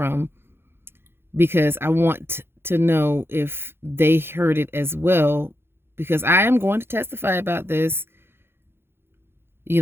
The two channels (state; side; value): late; left; 0.11 ms